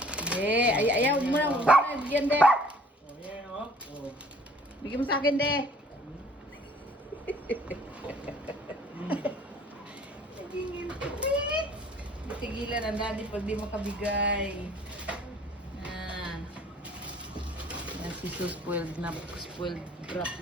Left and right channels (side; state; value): both; normal; correlation 0.54